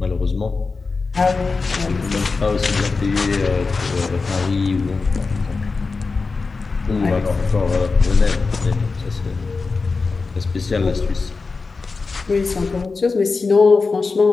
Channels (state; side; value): quieter; right; 4.3 dB